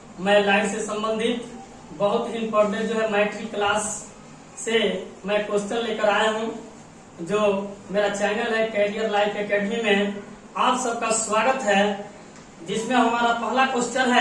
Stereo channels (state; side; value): identical; both; correlation 1.00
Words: मैं life से संबंधित बहुत ही इम्पोर्टेंट जो है मैट्रिक क्लास से मैं क्वेश्चन लेकर आया हूं। जो मेरा चैनल है कैरियर लाइफ एकेडमी में आप सबका स्वागत है, जिसमें हमारा पहला क्वेश्चन